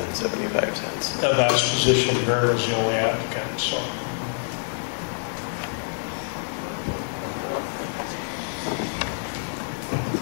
75 cents. that last position, Vern was the only applicant. So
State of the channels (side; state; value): right; silent; digital silence